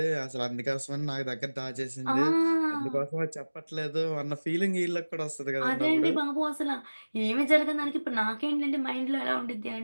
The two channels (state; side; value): inverted; both; correlation -1.00